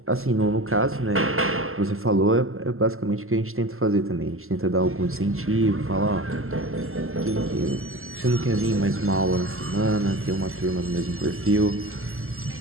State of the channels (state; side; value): late; left; 0.62 ms